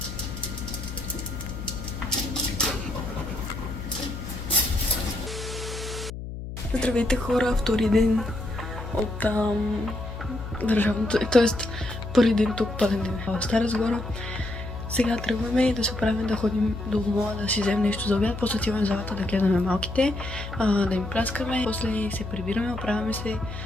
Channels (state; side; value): noise; left; hum, 8 dB below the sound